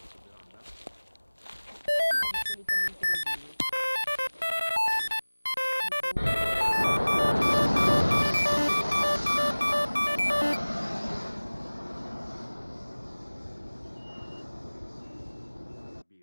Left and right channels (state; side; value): inverted; both; correlation -1.00